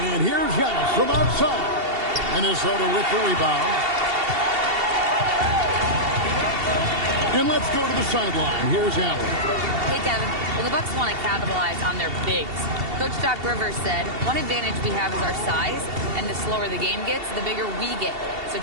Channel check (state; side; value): late; left; 2.7 ms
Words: And here's Giannis from outside. Minnesota with the rebound. And let's go to the sideline. Here's Allen. Hey, Kevin. Well, the Bucks want to capitalize on their bigs. Coach Doc Rivers said, one advantage we have is our size, and the slower the game gets, the bigger we get. So